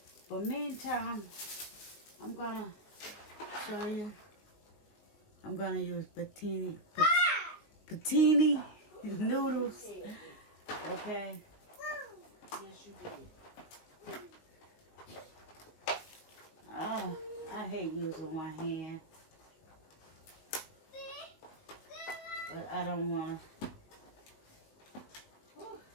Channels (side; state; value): right; late; 19 ms